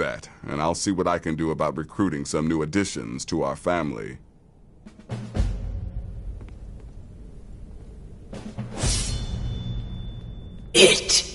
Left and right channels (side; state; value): both; identical; correlation 1.00